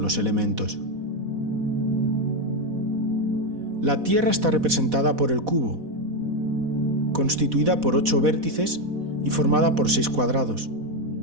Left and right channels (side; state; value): left; late; 4.1 ms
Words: elementos. La Tierra está representada por el cubo, constituida por 8 vértices y formada por 6 cuadrados.